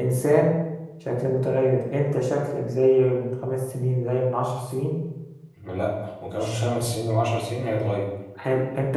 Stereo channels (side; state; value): both; identical; correlation 1.00